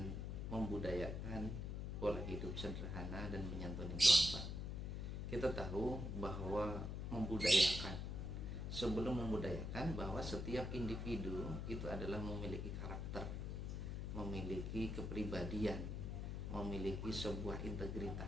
membudayakan pola hidup sederhana dan menyantuni doa. Kita tahu bahwa sebelum membudayakan bahwa setiap individu itu adalah memiliki karakter, memiliki kepribadian, memiliki sebuah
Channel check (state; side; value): noise; left; hum, 3 dB below the sound